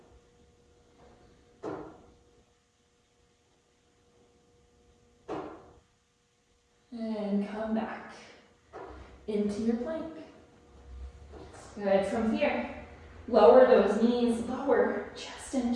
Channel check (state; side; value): identical; both; correlation 1.00